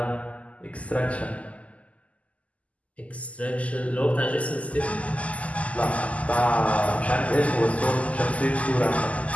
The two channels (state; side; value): late; right; 0.068 ms